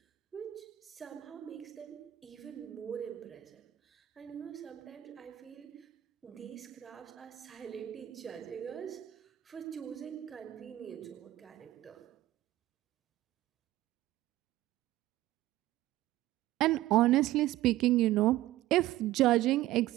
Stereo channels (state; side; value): quieter; left; 15.2 dB